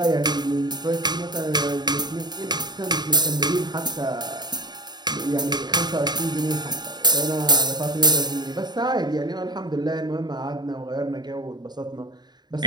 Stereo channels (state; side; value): late; left; 0.20 ms